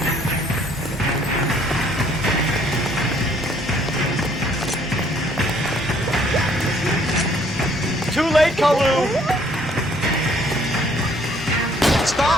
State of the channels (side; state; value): both; normal; correlation 0.62